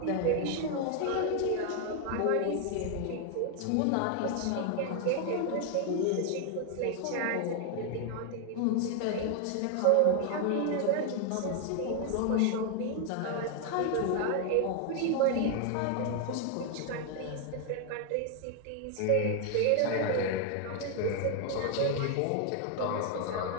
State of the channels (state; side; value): different; both; correlation 0.00